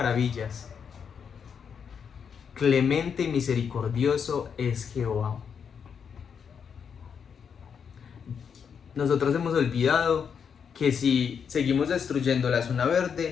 clemente y misericordioso es Jehová. Nosotros hemos olvidado que si seguimos destruyendo la zona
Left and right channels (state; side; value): quieter; right; 6.9 dB